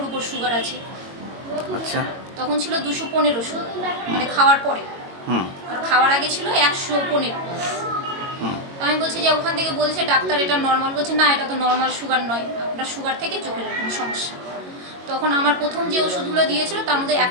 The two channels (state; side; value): late; left; 21 ms